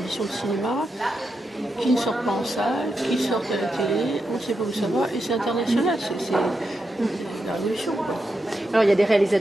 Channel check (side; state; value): both; normal; correlation 0.86